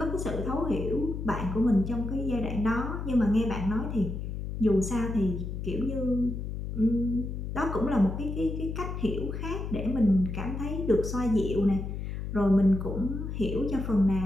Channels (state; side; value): noise; left; hum, 5 dB below the sound